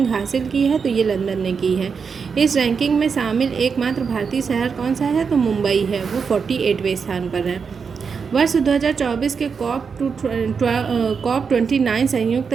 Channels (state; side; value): quieter; left; 5.8 dB